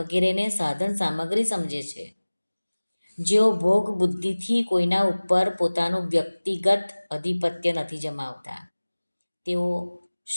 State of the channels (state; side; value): inverted; both; correlation -1.00